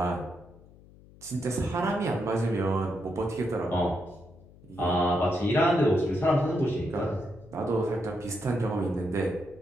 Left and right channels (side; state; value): left; noise; hum, 23 dB below the sound